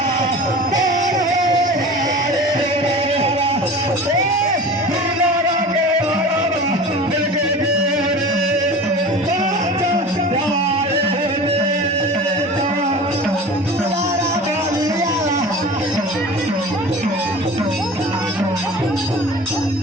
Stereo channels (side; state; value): both; normal; correlation 0.37